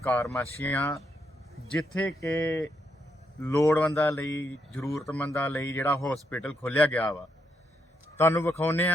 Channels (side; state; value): both; normal; correlation 0.79